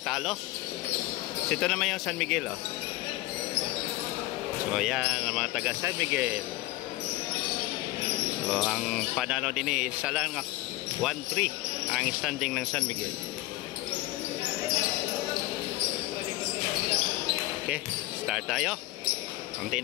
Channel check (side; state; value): right; quieter; 18.5 dB